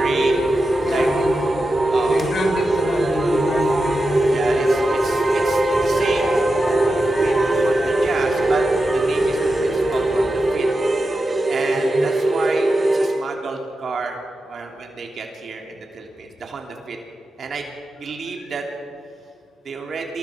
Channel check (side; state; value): both; normal; correlation 0.90